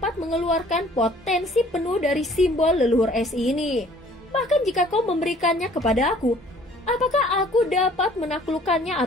mengeluarkan potensi penuh dari simbol leluhur es ini. Bahkan jika kau memberikannya kepada aku, apakah aku dapat menaklukkannya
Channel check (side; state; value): both; normal; correlation 0.55